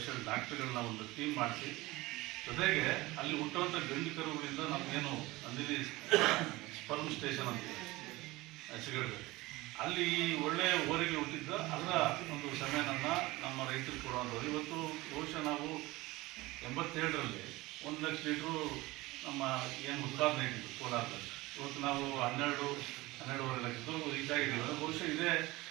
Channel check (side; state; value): left; quieter; 20.5 dB